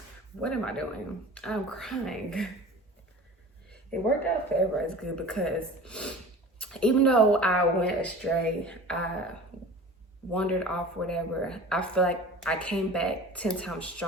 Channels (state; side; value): normal; both; correlation 0.39